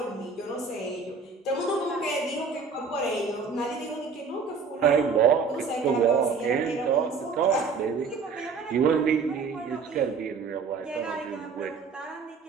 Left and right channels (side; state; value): left; quieter; 5.1 dB